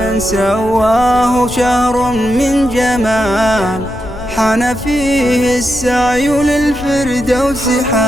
سواه شهر من جمال، حان فيه السعي للفردوس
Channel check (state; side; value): noise; left; rumble, 13 dB below the sound